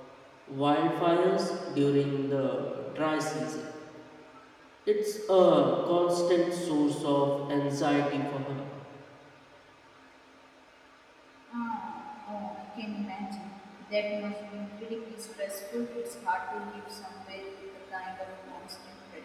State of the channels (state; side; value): identical; both; correlation 1.00